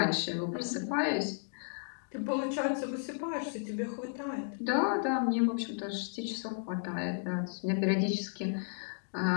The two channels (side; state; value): right; silent; digital silence